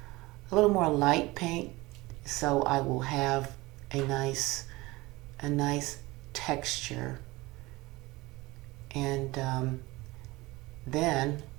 light paint, so I will have a nice texture. And then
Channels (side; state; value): left; quieter; 21.2 dB